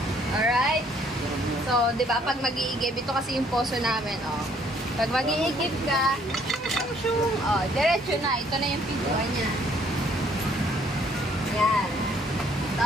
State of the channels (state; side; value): normal; both; correlation 0.63